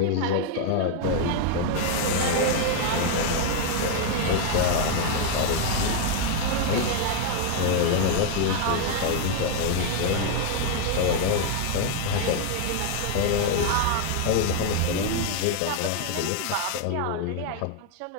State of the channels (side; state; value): both; different; correlation 0.01